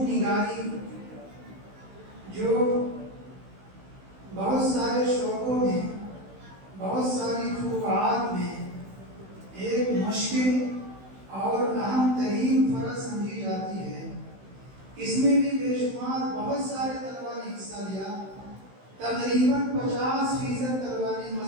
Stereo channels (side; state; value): left; late; 16 ms